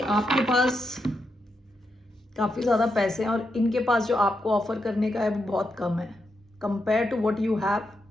पास काफ़ी ज़्यादा पैसे हैं और इनके पास जो आपको ऑफर करने का है वो बहुत कम है compare to what you have,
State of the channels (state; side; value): normal; both; correlation 0.84